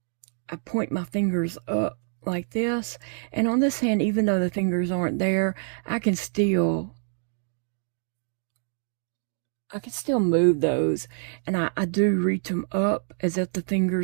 point my fingers up like this, and on this hand, even though the fingers aren't there, I can still move those, and I do reach them up as if the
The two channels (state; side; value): silent; left; digital silence